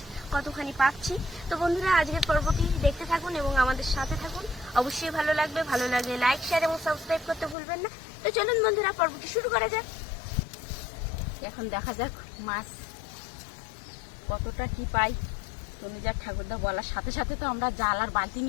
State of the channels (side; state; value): right; drops out; at 7.6 s